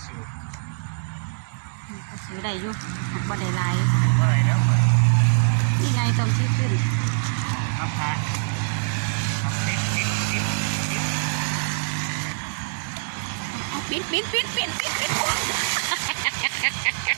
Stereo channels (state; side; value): silent; left; digital silence